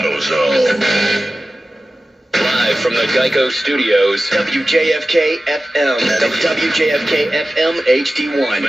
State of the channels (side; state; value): both; normal; correlation 0.95